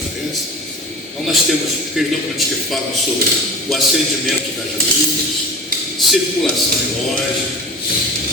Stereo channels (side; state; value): both; normal; correlation 0.36